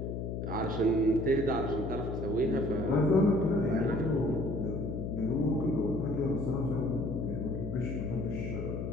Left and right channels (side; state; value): left; noise; hum, 4 dB below the sound